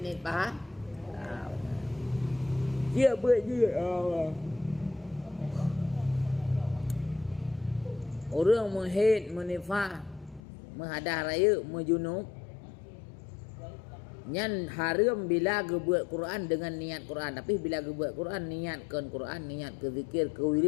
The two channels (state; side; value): drops out; right; at 10.4 s